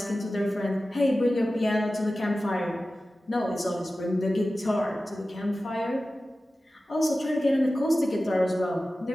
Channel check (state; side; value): normal; both; correlation 0.95